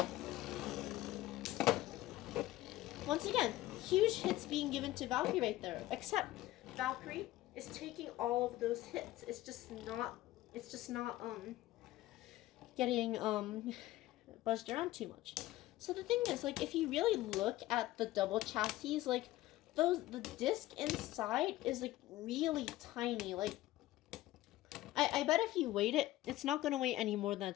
Once again, huge hits being given to Valkyrie right there. Except Valkyrie is taking all of those hits. It's just not getting buzzed around too much. So the thing is, like, if you really look at the double chassis, like, the disc inside is like really tiny. Like, I bet if you weighed it, it's not gonna weigh any more than a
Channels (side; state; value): right; quieter; 16.4 dB